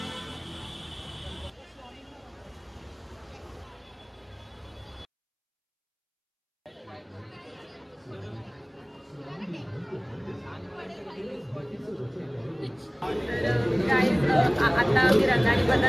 आता आम्ही रंगारी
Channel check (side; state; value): both; identical; correlation 1.00